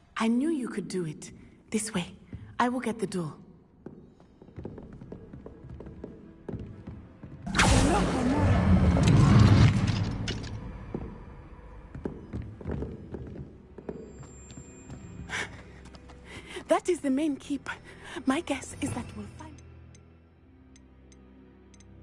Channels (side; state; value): both; identical; correlation 1.00